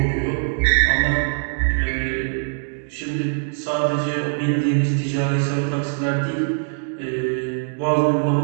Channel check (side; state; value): left; silent; digital silence